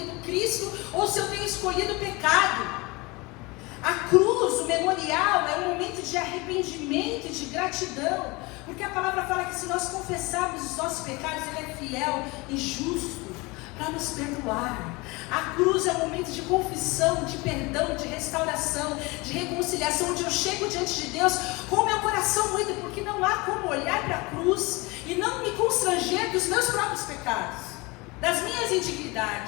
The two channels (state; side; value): quieter; right; 24.7 dB